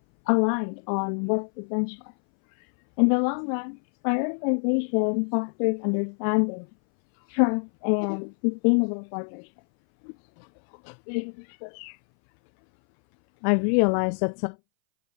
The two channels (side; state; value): right; silent; 61 dB below the other